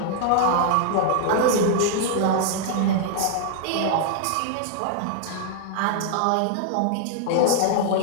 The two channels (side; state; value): both; different; correlation -0.01